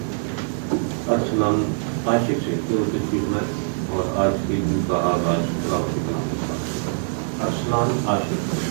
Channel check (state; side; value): silent; left; 63 dB below the other